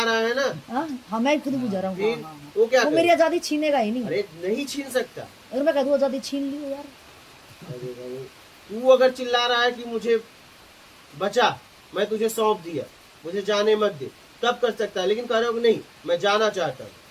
रहा है ना। हाँ, मैं खुद बुझा रहा हूँ। वो क्या वो मेरी आजादी छीनेगा ही नहीं। अरे नहीं छीन सकता। अगर मैं कह दूं आजादी छीन ली यार, तू अगर चिल्ला रहा है कि मुझे बचा, मैं तुझे सौंप दिया, मुझे जाने मत दे, तब कर सकता है। लेकिन कह रहे हो नहीं मैं जाना चाहता हूँ,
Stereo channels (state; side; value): identical; both; correlation 1.00